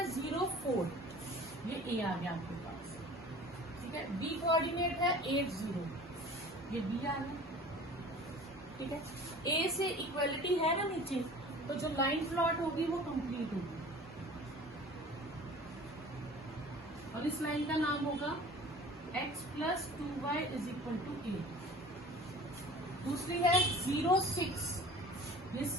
0 4, ये A आ गया आपके पास। ठीक है, B कोऑर्डिनेट है 8 0, ये B आ गया। ठीक है, A से इक्वलिटी है ना नीचे, तो जो लाइन प्लॉट होगी वो कंप्लीट होगी और इस लाइन का नाम होगा x plus 2y is equal to 8। दूसरी है 0 6, ये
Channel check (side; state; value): both; normal; correlation 0.43